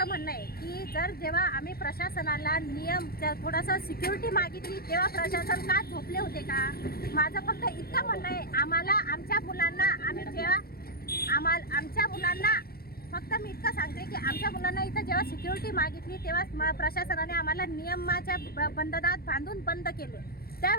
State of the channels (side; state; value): right; late; 0.44 ms